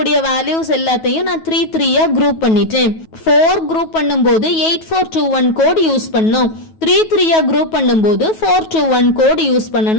வேல்யூஸ் எல்லாத்தையும் நான் 3 குரூப் பண்ணிட்டேன். 4 குரூப் பண்ணும்போது 8421 கோட் யூஸ் பண்ணோம். 3 குரூப் பண்ணும்போது 421 கோட் யூஸ்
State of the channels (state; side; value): late; right; 9.3 ms